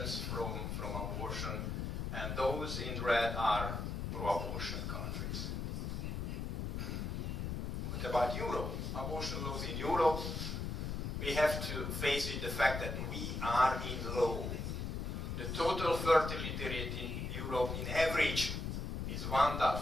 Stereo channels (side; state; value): left; noise; rumble, 3 dB below the sound